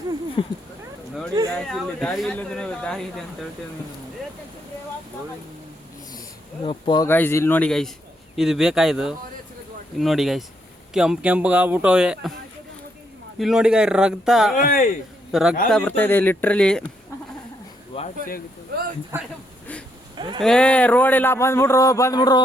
ನೋಡಿ guys, ಇಲ್ಲಿ ದಾರಿ ಇಲ್ಲದ್ರೆ ದಾರಿ ಇದೆ ಅಂತ ಹೇಳ್ತೇವೆ ಯಪ್ಪ ಗೈಸ್ ಇಲ್ಲಿ ನೋಡಿ ಗೈಸ್ ಇದು ಬೇಕಾಯ್ದು ಇಲ್ಲಿ ನೋಡಿ ಗೈಸ್ ಕೆಂಪು ಆಗ್ಬಿಟ್ಟವೆ ಇಲ್ಲಿ ನೋಡಿ ಗೈ ರಕ್ತ ಬರ್ತಾ ಇದೆ ಲಿಟ್ರಲಿ ಏ ರೋಡ್ ಇಲ್ಲ ಬಂದ್ಬಿಡ್ರು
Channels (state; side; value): normal; both; correlation 0.75